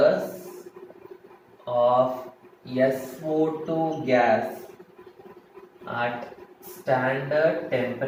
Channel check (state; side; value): identical; both; correlation 1.00